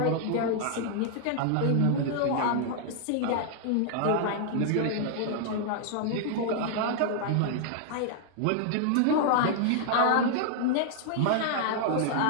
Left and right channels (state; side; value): different; both; correlation 0.00